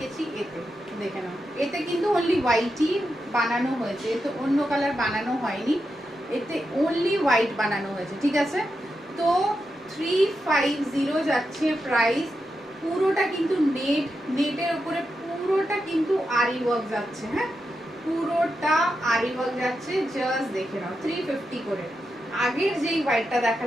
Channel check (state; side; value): normal; both; correlation 0.87